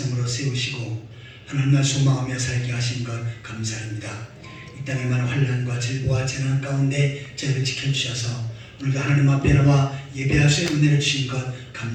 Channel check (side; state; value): both; identical; correlation 1.00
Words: 세우시고 하나님을 소망하며 살게 하신 것 감사합니다. 이 땅에 많은 환난과 질보와 재난 가운데 저희를 지켜주셔서 오늘도 하나님 앞에 나와 예배할 수 있는 은혜를 주신 것